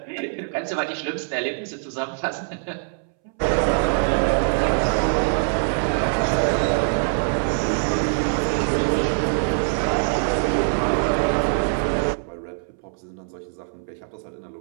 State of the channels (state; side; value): silent; left; 63 dB below the other